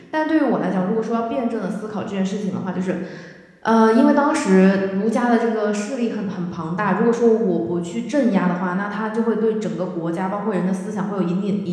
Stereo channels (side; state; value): both; identical; correlation 1.00